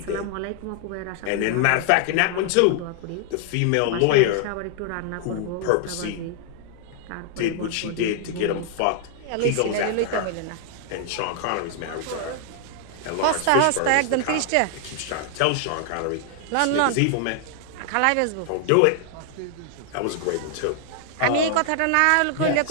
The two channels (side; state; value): both; different; correlation 0.00